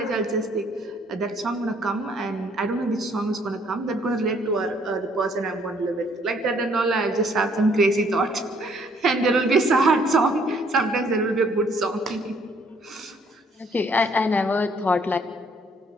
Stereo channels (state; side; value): normal; both; correlation 0.64